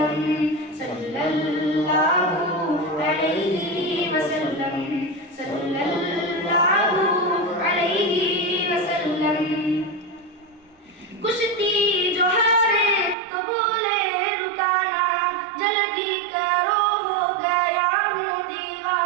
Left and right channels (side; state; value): left; drops out; at 13.2 s